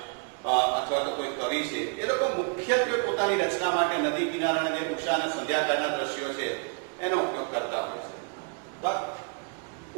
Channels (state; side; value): quieter; left; 38.9 dB